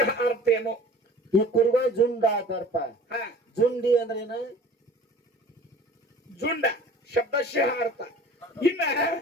ಅರ್ಥ ಏನು? ಈ ಕುರಿಗಳು ಜುಂಡ ಆತಾರಪ್ಪ. ಜುಂಡಿ ಅಂದ್ರೆ ಏನು? ಜುಂಡ ಶಬ್ದಶಃ ಅರ್ಥ. ಇನ್ನ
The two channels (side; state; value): both; normal; correlation 0.45